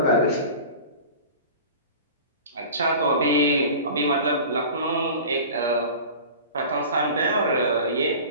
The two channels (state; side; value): inverted; both; correlation -0.37